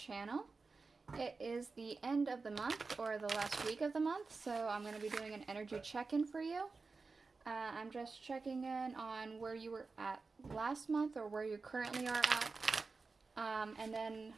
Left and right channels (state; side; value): quieter; left; 4.2 dB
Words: It is the end of the month, or the last week of the month, so I'm going to be doing an energy check-in for you. I'm just checking in on where you were at last month, or where you currently are at, and then